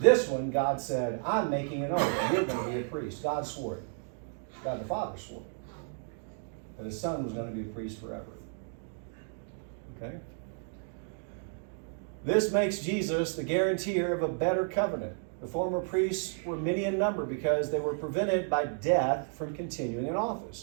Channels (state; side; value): silent; left; 56 dB below the other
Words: one, God said, I'm making an oath. You're going to be a priest. God swore it. God the Father swore it. That his son was going to be a priest forever. Okay? This makes Jesus the guarantor of a better covenant. The former priests were many in number because they were prevented by death from continuing in